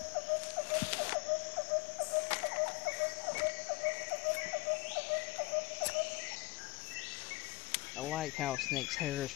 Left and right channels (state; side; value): quieter; right; 22.6 dB